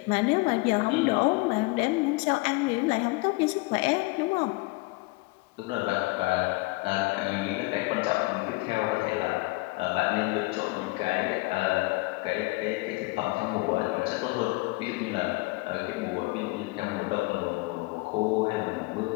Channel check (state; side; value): quieter; right; 24.4 dB